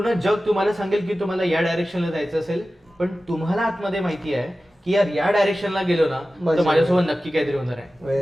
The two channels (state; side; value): normal; both; correlation 0.95